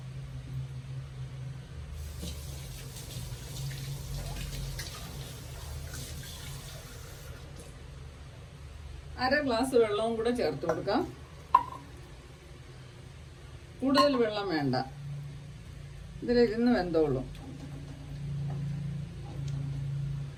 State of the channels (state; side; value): identical; both; correlation 1.00